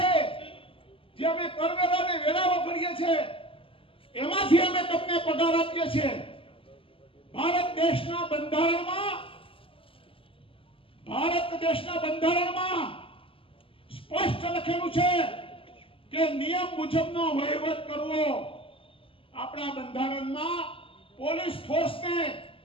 જે અમે કરવેરાને વેરાવો કરીએ છીએ એમાંથી અમે તમને પગાર આપીએ છીએ. ભારત દેશના બંધારણમાં સ્પષ્ટ લખેલું છે કે નિયમ મુજબનો વહીવટ કરવો. આપણા બંધારણમાં પોલીસ ફોર્સને,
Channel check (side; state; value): right; late; 0.26 ms